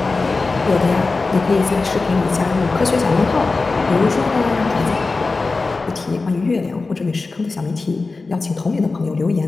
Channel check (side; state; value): right; quieter; 3.8 dB